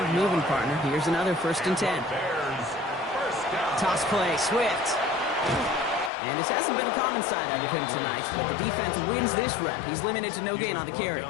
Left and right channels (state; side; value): drops out; right; at 6.1 s